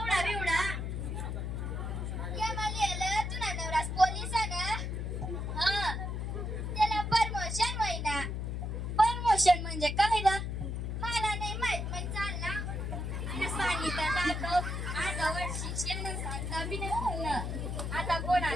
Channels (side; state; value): left; noise; hum, 3 dB below the sound